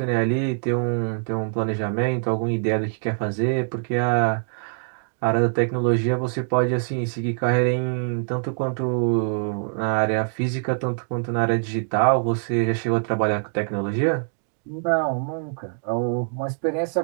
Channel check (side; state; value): left; silent; digital silence